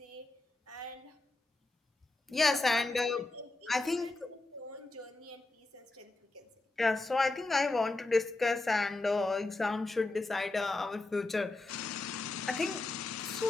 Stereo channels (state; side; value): quieter; right; 3.0 dB